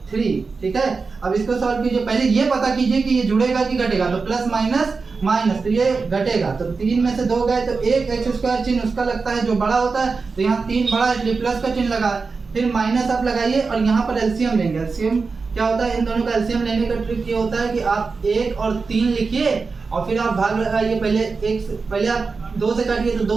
3। ठीक है, अब इसको सॉल्व कीजिए। पहले ये पता कीजिए कि ये जुड़ेगा कि घटेगा, तो प्लस माइनस माइनस, तो ये घटेगा। तो 3 में से 2 गए तो एक एक्स स्क्वायर चिन्ह उसका लगता है जो बड़ा होता है, तो यहाँ 3 बड़ा इसलिए प्लस का चिन्ह लगा। फिर माइनस आप लगाइए और यहाँ पर एलसीएम लेंगे। एलसीएम क्या होता है? इन दोनों का एलसीएम लेने का ट्रिक ये होता है कि आप 1 और 3 लिखिए और फिर आप भाग लगाइए। पहले आप 2 से काटिए तो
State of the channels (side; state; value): left; quieter; 4.5 dB